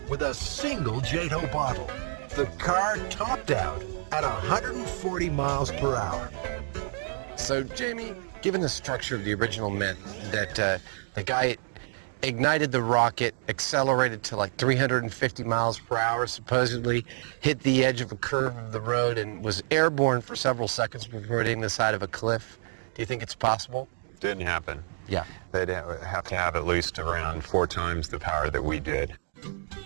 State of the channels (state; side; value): silent; left; digital silence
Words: with a single JATO bottle. The car topped out at 140 miles per hour. So, Jamie, given the structure of the original myth that the guy ignited the rocket, accelerated to like 350 miles per hour, supposedly hit the edge of a curve of the road and was airborne for several seconds before hitting the side of a cliff, do you think it's possible? Didn't happen. Yeah. They'd have to have at least around 4 times the power that we did.